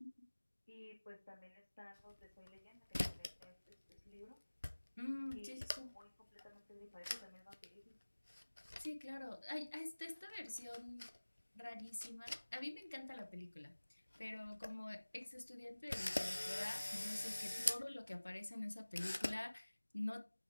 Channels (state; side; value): inverted; both; correlation -1.00